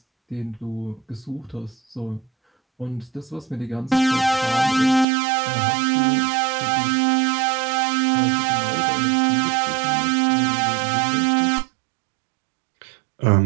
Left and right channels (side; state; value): left; drops out; at 5.1 s